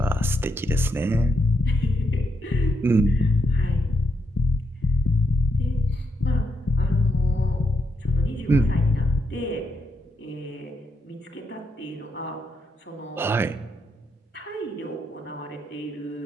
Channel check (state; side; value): normal; both; correlation 0.81